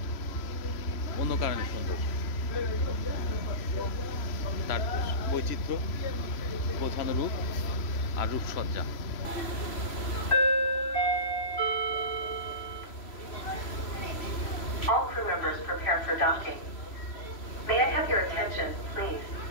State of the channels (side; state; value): right; late; 3.0 ms